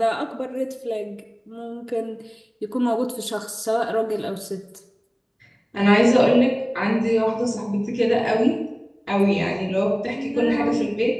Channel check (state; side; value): identical; both; correlation 1.00